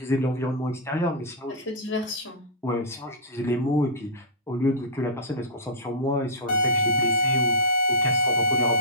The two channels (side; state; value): both; normal; correlation -0.14